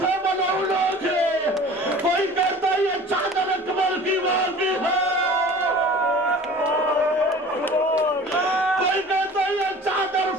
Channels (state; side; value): normal; both; correlation 0.43